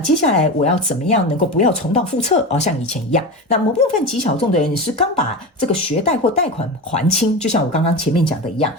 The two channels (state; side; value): normal; both; correlation 0.24